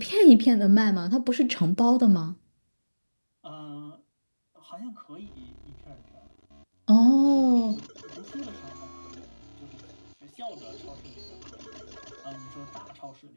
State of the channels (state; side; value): inverted; both; correlation -1.00